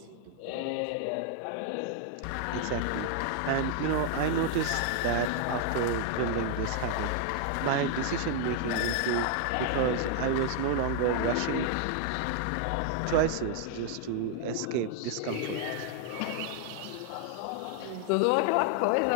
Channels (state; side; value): different; both; correlation 0.00